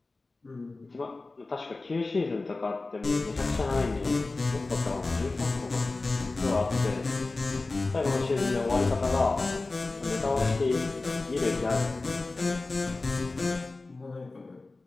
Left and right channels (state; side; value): quieter; right; 3.4 dB